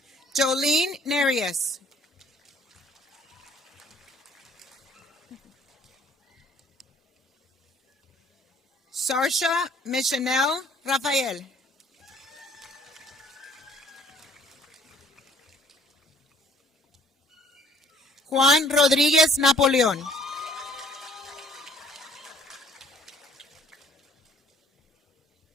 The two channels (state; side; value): normal; both; correlation 0.57